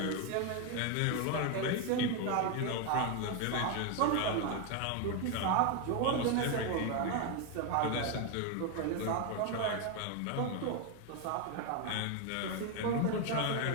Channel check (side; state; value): both; different; correlation 0.01